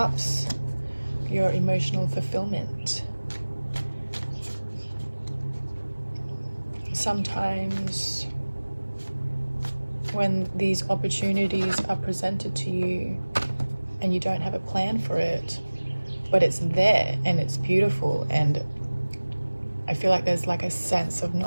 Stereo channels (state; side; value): inverted; both; correlation -1.00